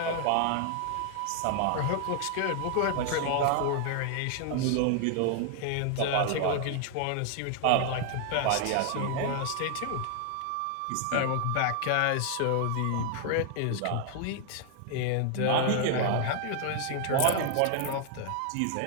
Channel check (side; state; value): both; different; correlation 0.00